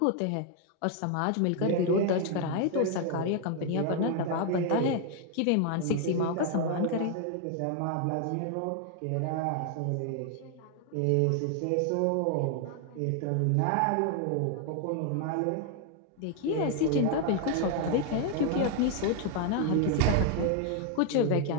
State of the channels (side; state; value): both; different; correlation 0.00